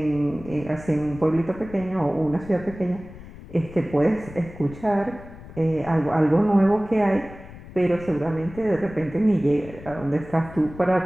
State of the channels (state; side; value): noise; left; rumble, 16 dB below the sound